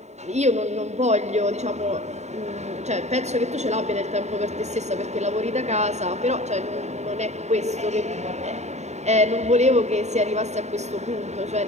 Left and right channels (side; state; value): left; late; 0.33 ms